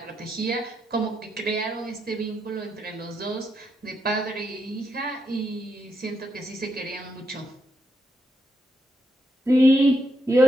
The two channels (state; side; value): normal; both; correlation 0.81